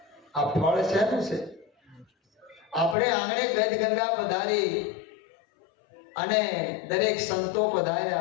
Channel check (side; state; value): right; drops out; at 3.0 s